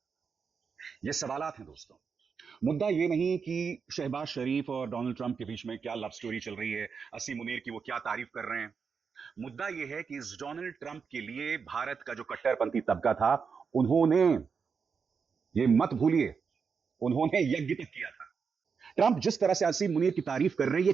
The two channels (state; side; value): quieter; left; 5.8 dB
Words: ये सवालात हैं दोस्तों। मुद्दा ये नहीं कि शहबाज शरीफ और डोनाल्ड ट्रंप के बीच में क्या लव स्टोरी चल रही है, असीम मुनीर की वो क्या तारीफ कर रहे हैं। मुद्दा यह है कि इस डोनाल्ड ट्रंप के लिए भारत का जो कट्टरपंथी तबका था, उन्होंने, ये मत भूलिए, उन्होंने यज्ञ तक किया था। ट्रंप जिस तरह से असीम मुनीर की तारीफ कर रहे हैं, ये